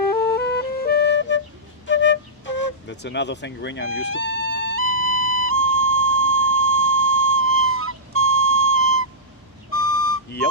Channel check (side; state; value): both; normal; correlation -0.16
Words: That's another fingering I'm used to. Yep.